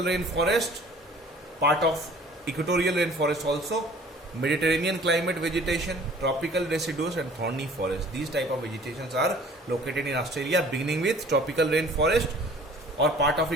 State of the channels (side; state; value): both; normal; correlation 0.50